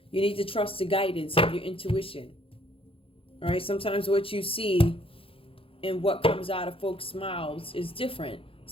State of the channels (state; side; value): late; right; 0.27 ms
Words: You need to trust the guidance of your intuition. All right, sometimes what you see and what comes out of folks' mouths is different.